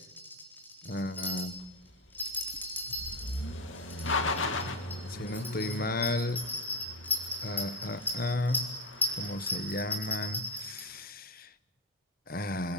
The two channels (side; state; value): both; normal; correlation 0.13